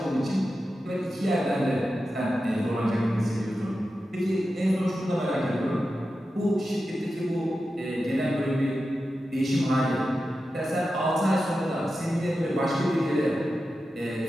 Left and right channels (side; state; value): both; normal; correlation 0.91